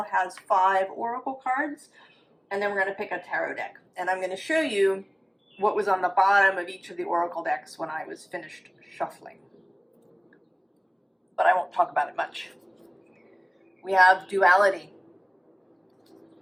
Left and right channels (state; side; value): identical; both; correlation 1.00